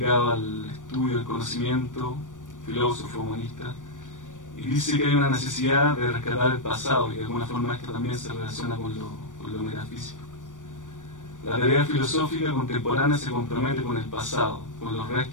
al estudio del conocimiento, filósofo, humanista, y dice que hay una necesidad de rescatar el pasado, y de alguna forma esto también se relaciona con lo metafísico. La tarea filosófica contemporánea se compromete con el pasado, con los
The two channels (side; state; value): right; late; 0.87 ms